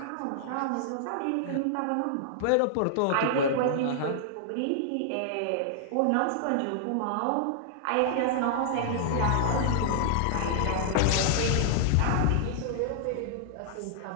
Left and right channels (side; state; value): both; different; correlation -0.01